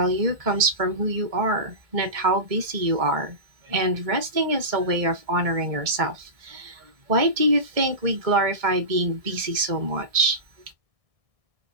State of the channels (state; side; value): late; left; 1.6 ms